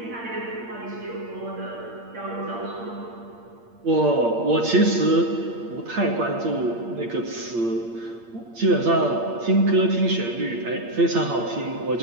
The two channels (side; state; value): left; late; 8.6 ms